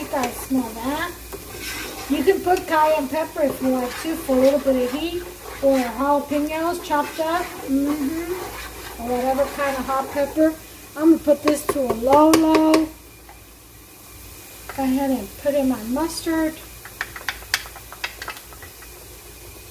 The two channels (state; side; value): identical; both; correlation 1.00